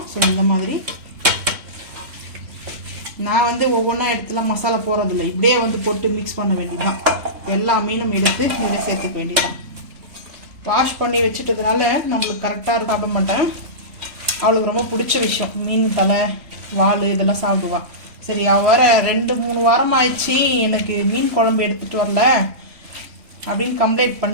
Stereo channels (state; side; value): late; left; 3.1 ms